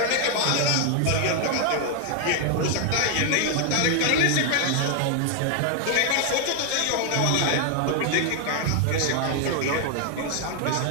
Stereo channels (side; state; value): both; different; correlation 0.00